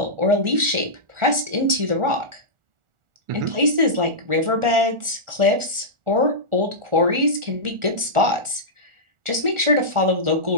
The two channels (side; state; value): left; late; 1.4 ms